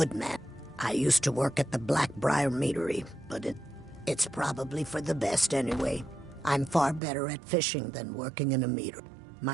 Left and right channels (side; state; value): left; drops out; at 7.0 s